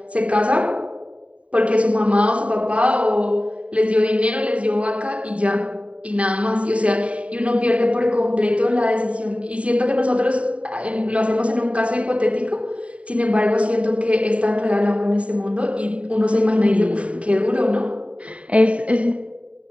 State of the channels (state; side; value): late; left; 0.065 ms